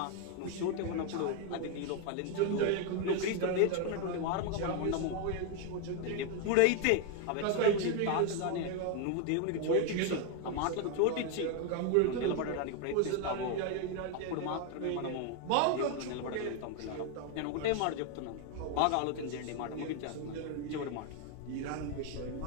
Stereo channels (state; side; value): different; both; correlation 0.01